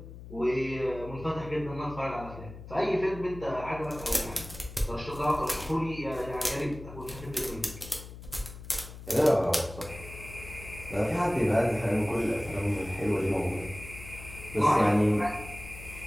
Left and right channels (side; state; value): left; noise; hum, 14 dB below the sound